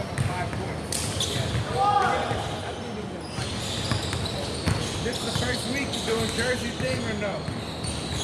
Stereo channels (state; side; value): identical; both; correlation 1.00